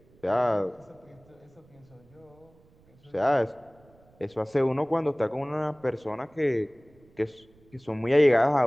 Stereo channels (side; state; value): right; noise; rumble, 29 dB below the sound